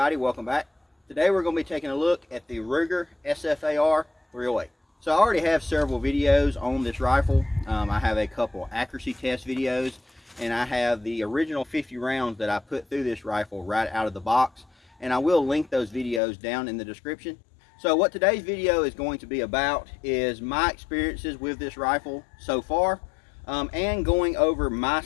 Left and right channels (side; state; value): right; drops out; at 16.2 s